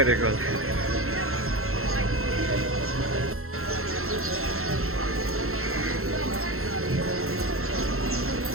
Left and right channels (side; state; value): left; late; 0.62 ms